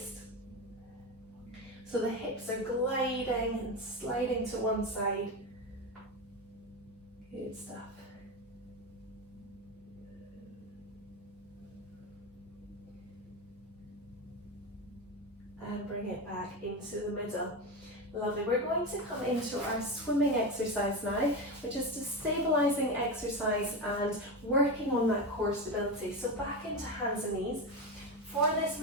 So the hips are gliding and sliding to one side. Good stuff. And bring it back into the middle. Lovely. We're going to come into our swimming exercise now, which is a stabilising exercise and working on that core stability. So back into hands and knees. For this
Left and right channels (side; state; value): both; normal; correlation 0.18